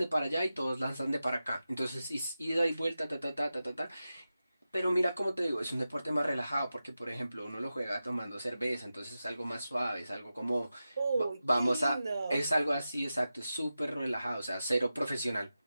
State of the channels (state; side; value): inverted; both; correlation -0.93